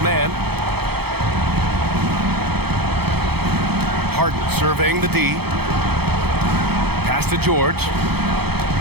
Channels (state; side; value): late; left; 0.96 ms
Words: Harden surveying the D. Pass to George.